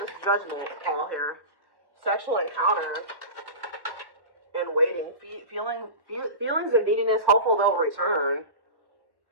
Judgment call here? Sexual encounter and waiting. Feelings of neediness, hopeful they'll return.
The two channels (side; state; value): left; late; 1.1 ms